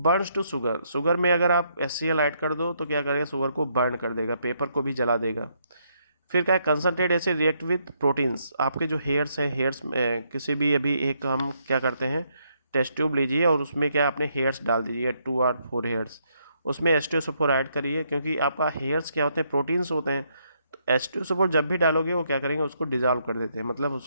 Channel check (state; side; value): inverted; both; correlation -0.74